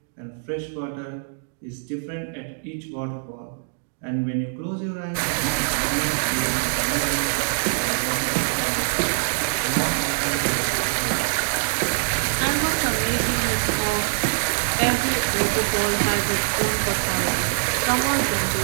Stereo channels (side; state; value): left; silent; digital silence